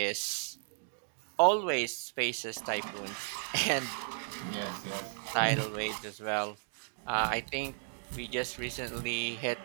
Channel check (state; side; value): silent; left; digital silence